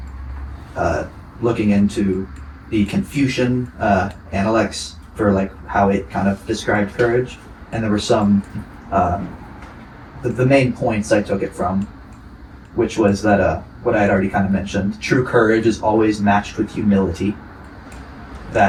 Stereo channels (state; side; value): identical; both; correlation 1.00